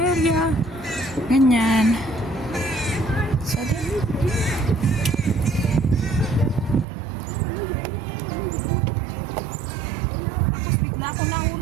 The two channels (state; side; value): drops out; left; at 6.9 s